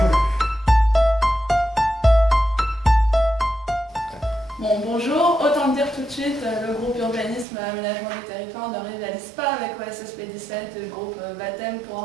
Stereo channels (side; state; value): left; drops out; at 7.5 s